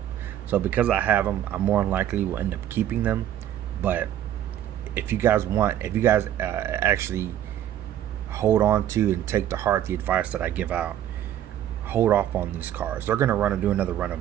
So because I have them, I more than likely will end up keeping them. But if you guys actually hold on to and take to heart the advice that I give out, hold off on these cars. They're gonna do another run of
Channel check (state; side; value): quieter; left; 11.4 dB